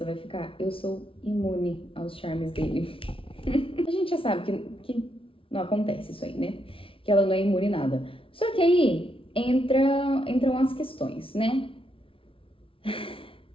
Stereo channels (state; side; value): late; right; 0.26 ms